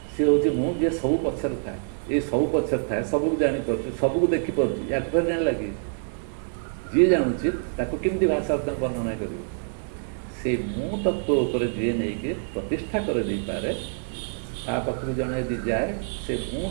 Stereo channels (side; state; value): left; silent; digital silence